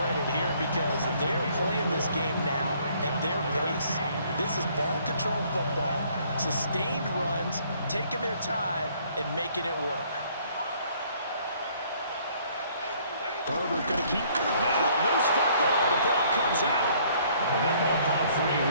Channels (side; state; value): both; inverted; correlation -0.62